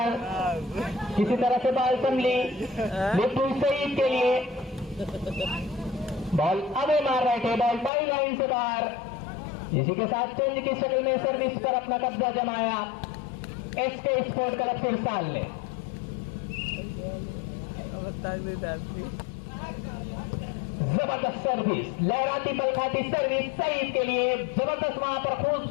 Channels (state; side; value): drops out; right; at 7.9 s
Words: किसी तरह से बॉल संभली, लिफ्ट सईद के लिए, बॉल अबे मार रहे थे, बॉल टाई लाइन से बाहर। इसी के साथ चेंज की शक्ल में सर्विस पर अपना कब्जा जमाया एसके स्पोर्ट क्लब सिरसाल ने। जबरदस्त सर्विस, लहराती पलखाती सर्विस सईद के लिए, जबरदस्त वहां पर